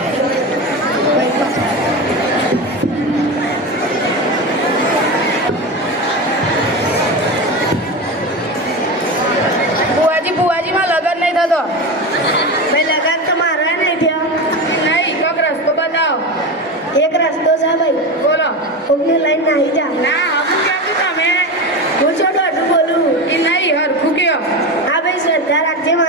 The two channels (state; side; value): normal; both; correlation 0.22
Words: ભુવાજી બુવાજીમાં લગન નહીં થતો. ભાઈ લગન તો મારા નહીં થયા. નહીં, કોક રસ્તો બતાવો. એક રસ્તો છે ભાઈ. બોલો. કોકની લઈને નાહી જા. ના, હમું ક્યાંથી તમે? હું છો દોઢું બોલું. એ નહીં, હરખું કયો. હા ભાઈ શ્રદ્ધા રાખજે